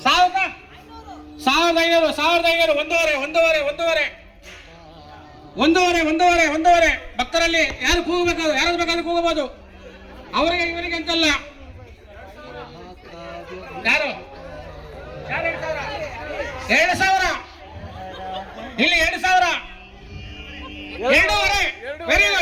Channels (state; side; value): identical; both; correlation 1.00